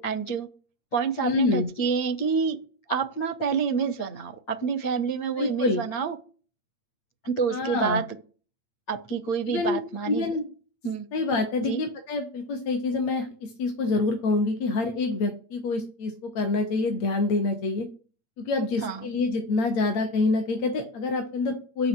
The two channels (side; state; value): right; late; 8.7 ms